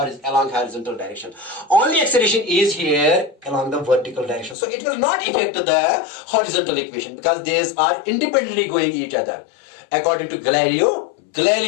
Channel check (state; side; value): drops out; right; at 4.5 s